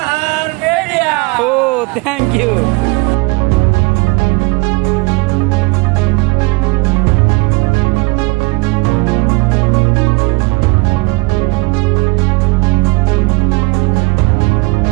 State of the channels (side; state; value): left; quieter; 26.0 dB